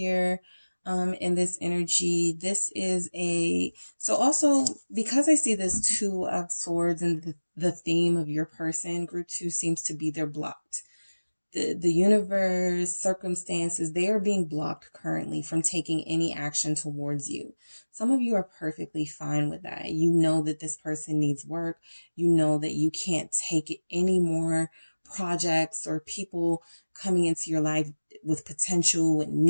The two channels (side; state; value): both; inverted; correlation -1.00